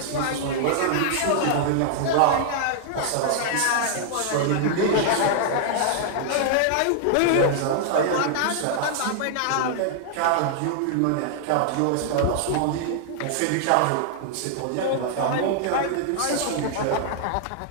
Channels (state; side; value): different; both; correlation -0.01